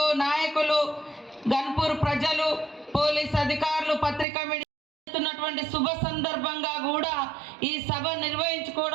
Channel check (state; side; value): drops out; left; at 4.2 s